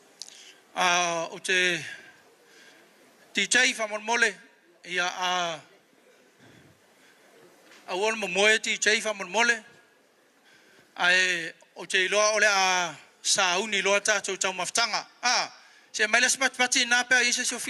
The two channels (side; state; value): both; identical; correlation 1.00